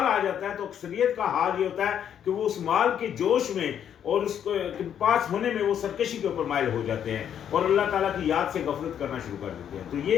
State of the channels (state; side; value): quieter; right; 9.2 dB